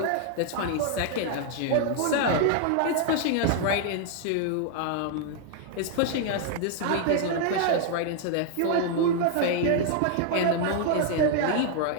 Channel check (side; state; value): both; different; correlation 0.00